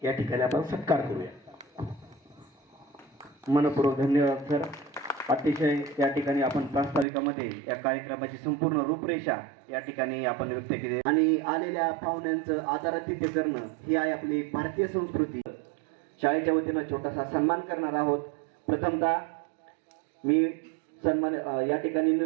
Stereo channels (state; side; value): drops out; left; at 7.1 s